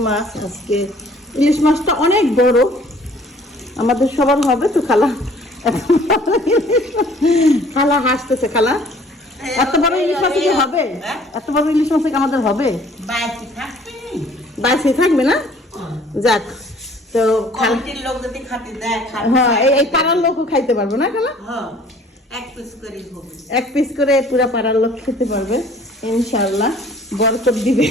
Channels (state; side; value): normal; both; correlation 0.55